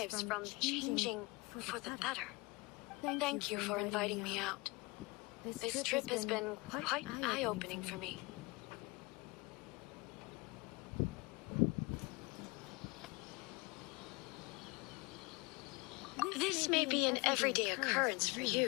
from changing for the better. Thank you for inviting me out. This trip has been quite eye-opening for me. This may be an everyday occurrence for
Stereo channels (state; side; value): quieter; right; 25.2 dB